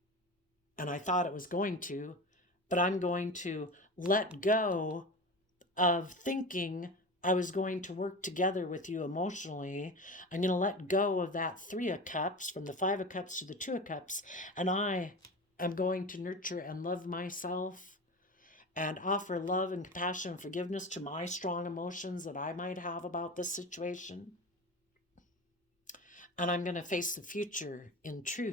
and I thought it was going to, but I'm going to let go of thinking I was going to work together with you emotionally. I'm going to let go of that 3 of Cups, from the 5 of Cups to the 2 of Cups, and I am going to nurture and love myself and offer love and compassion and forgiveness to my strong emotions that I might have about this situation. And I'm going to face the future in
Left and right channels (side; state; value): both; normal; correlation 0.29